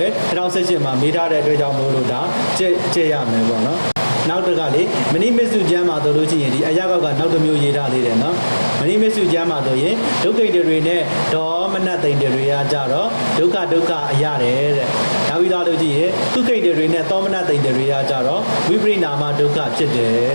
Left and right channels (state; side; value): inverted; both; correlation -1.00